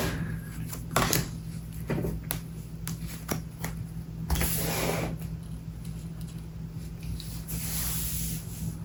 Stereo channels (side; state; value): both; identical; correlation 1.00